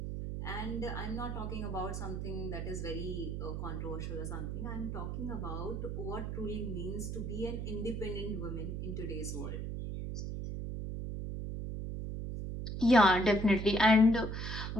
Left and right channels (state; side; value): noise; right; hum, 4 dB below the sound